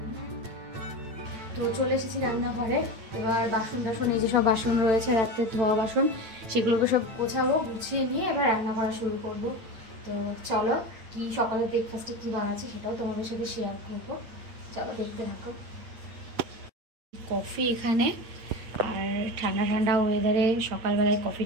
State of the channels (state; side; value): late; left; 9.0 ms